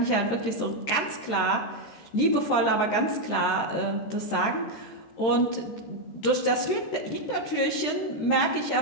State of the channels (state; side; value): late; right; 13 ms